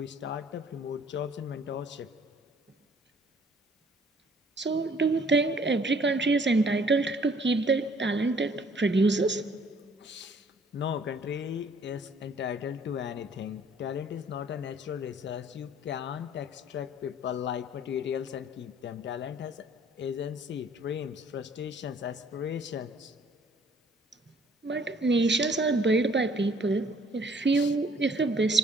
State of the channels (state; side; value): normal; both; correlation 0.59